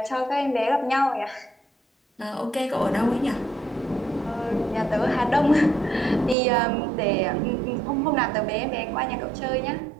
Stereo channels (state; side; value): drops out; left; at 6.4 s